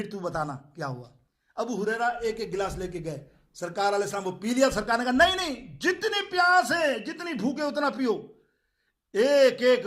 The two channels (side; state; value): both; identical; correlation 1.00